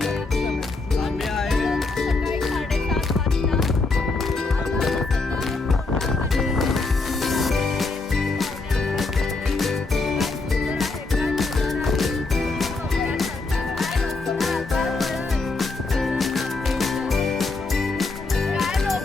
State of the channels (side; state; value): right; quieter; 3.6 dB